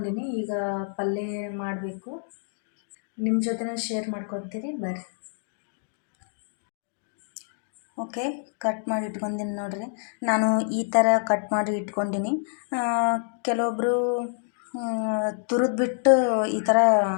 ಈಗ ಪಲ್ಯ ಮಾಡಬೇಕು, ನಿಮ್ಮ ಜೊತೆ ಶೇರ್ ಮಾಡ್ಕೊತೀನಿ, ಬರ್ರಿ. ಓಕೆ, ಕಟ್ ಮಾಡಿ ಇಟ್ಕೊಂಡಿನಿ ನೋಡಿರಿ. ನಾನು ಈ ಥರ ಕಟ್ ಮಾಡಿ ಇಟ್ಕೊಂಡಿನಿ. ಕೆಲವೊಬ್ಬರು ತುರಿದ್ಬಿಟ್ಟು ಈ ಥರ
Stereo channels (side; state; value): right; silent; digital silence